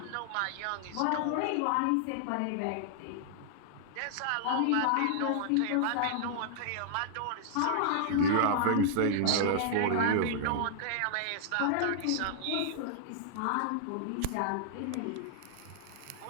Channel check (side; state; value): both; different; correlation -0.01